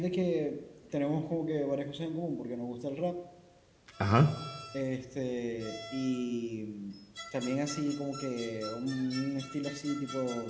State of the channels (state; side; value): identical; both; correlation 1.00